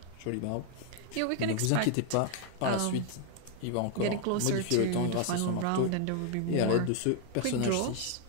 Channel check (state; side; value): different; both; correlation 0.00